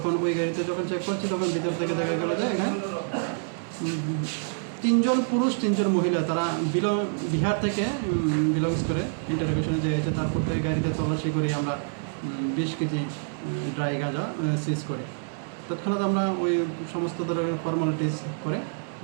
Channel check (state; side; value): silent; left; 60 dB below the other